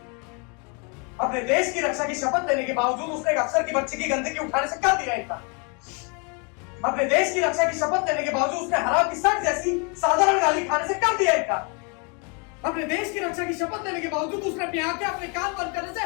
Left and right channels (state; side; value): quieter; right; 33.9 dB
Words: अपने देश की रक्षा की शपथ लेने के बावजूद उसने एक अफसर की बच्ची की गंदगी उठाने से कर दिया इनकार। अपने देश की रक्षा की शपथ लेने के बावजूद उसने हराम की सख्त जैसी साधारण गाली खाने से कर दिया इनकार। अपने देश की रक्षा की शपथ लेने के बावजूद उसने अपनी आंखें अपने कान बंद करने से